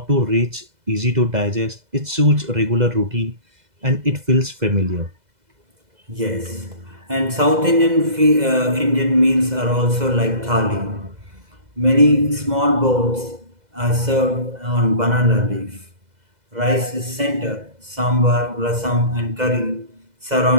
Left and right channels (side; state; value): left; late; 2.0 ms